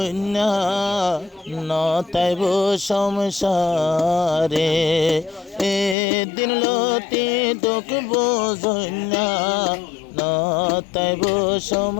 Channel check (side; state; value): right; drops out; at 6.0 s